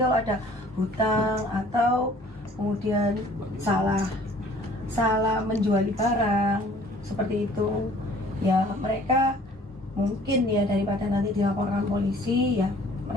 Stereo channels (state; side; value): normal; both; correlation 0.53